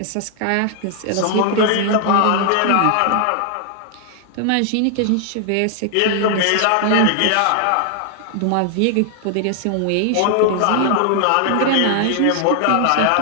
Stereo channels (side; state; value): both; different; correlation 0.00